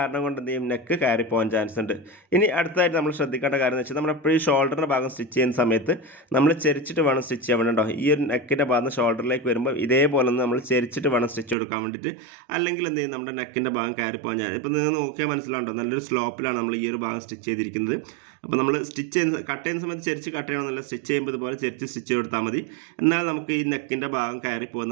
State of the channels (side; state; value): left; drops out; at 11.6 s